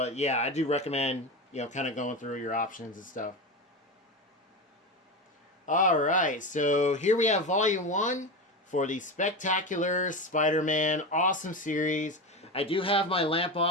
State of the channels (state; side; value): normal; both; correlation 0.20